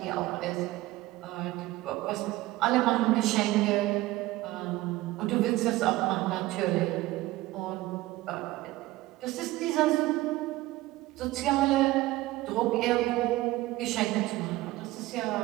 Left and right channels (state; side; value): quieter; left; 17.9 dB